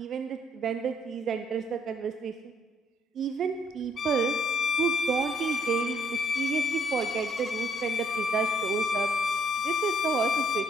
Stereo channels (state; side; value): normal; both; correlation 0.68